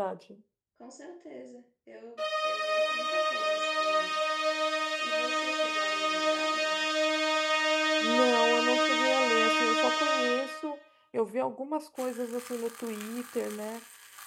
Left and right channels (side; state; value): both; identical; correlation 1.00